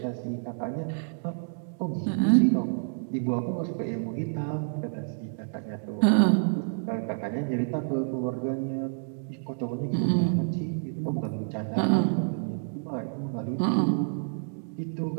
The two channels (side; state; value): left; silent; digital silence